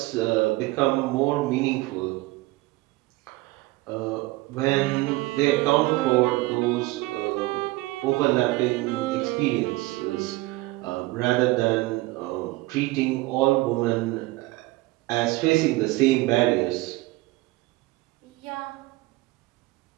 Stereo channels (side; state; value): left; quieter; 20.7 dB